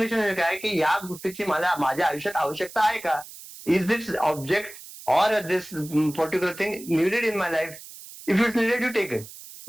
काय की या गोष्टीची माझ्या आयुष्यात आवश्यकता आहे का. Is this object or this particular thing needed in my life? If it's needed, you take it.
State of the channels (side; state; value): right; noise; hiss, 16 dB below the sound